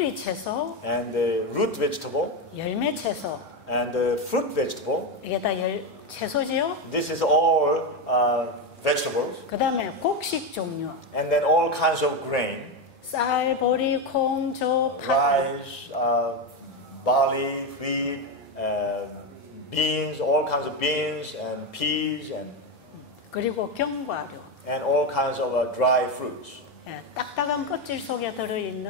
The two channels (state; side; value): normal; both; correlation 0.11